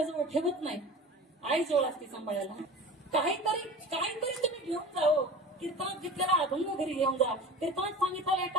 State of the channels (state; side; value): normal; both; correlation 0.36